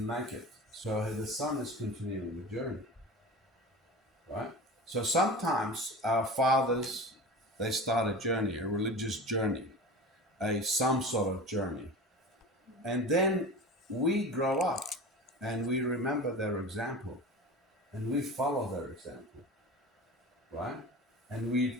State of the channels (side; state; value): both; normal; correlation 0.33